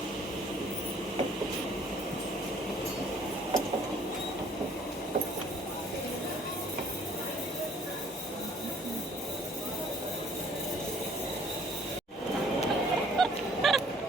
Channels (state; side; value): normal; both; correlation 0.58